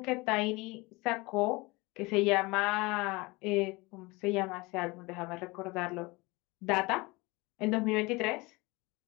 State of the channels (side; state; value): right; quieter; 24.2 dB